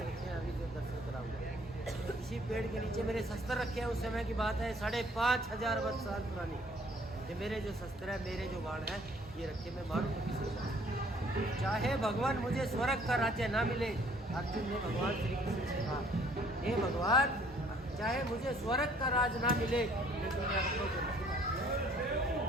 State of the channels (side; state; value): both; normal; correlation 0.59